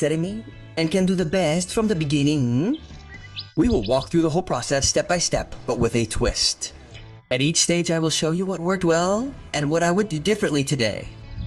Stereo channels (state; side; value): identical; both; correlation 1.00